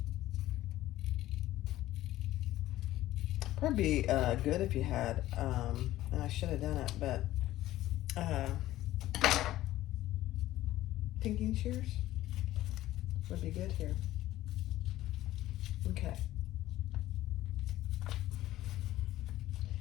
Probably be good if you had, and I should have done it, but pinking shears would be good here. Okay.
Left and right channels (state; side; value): quieter; right; 15.0 dB